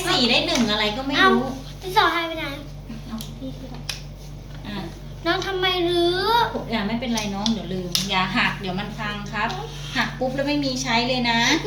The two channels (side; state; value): both; identical; correlation 1.00